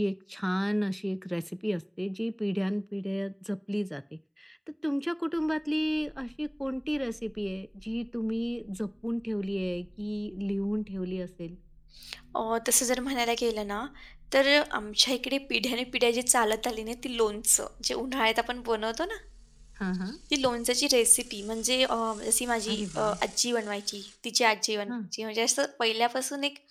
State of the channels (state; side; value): identical; both; correlation 1.00